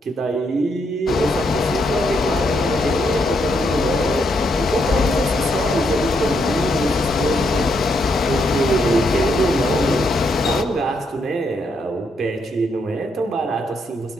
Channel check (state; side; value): normal; both; correlation 0.77